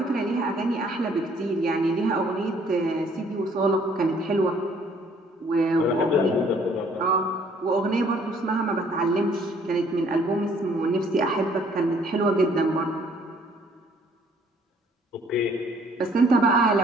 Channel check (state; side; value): normal; both; correlation 0.61